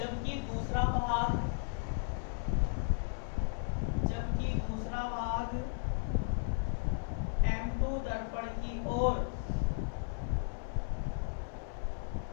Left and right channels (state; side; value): silent; right; 54 dB below the other